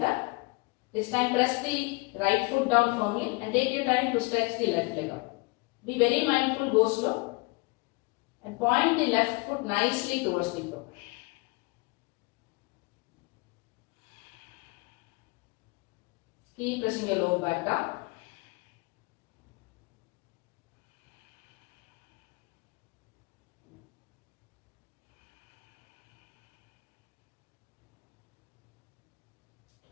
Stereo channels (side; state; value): right; quieter; 26.8 dB